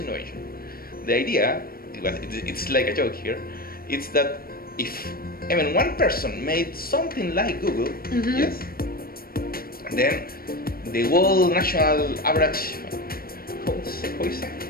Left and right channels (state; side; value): late; right; 0.43 ms